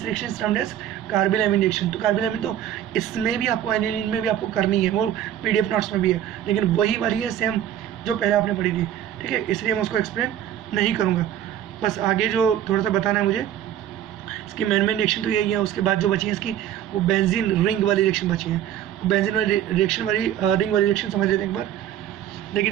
reaction is termed as carbylamine reaction. तो carbylamine तो इसमें भी आपको, aniline में भी आपको करनी है, वो PDF नोट्स में भी है, लेकिन वही वाली है सेम जो पहले आपने पढ़ी थी, ठीक है, इसलिए मैं उसको एक्सप्लेन नहीं करूँगा। बस आगे जो थोड़ा सा बताना है मुझे, इसकी मेन रिएक्शन तो यही है, उसके बाद जो बची है इसकी वो बेंजीन रिंग वाली रिएक्शन बची है, वो बेंजीन वाली रिएक्शन वाली रिंग वाली रिएक्शन समझ लेते हैं एक बार। देखिए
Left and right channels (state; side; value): quieter; left; 10.9 dB